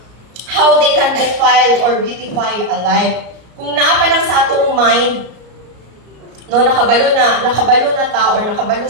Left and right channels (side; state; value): left; late; 34 ms